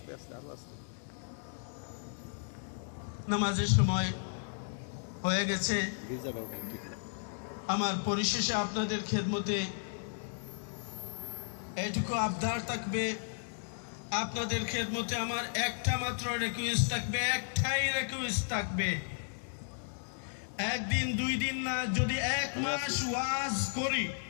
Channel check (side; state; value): right; silent; digital silence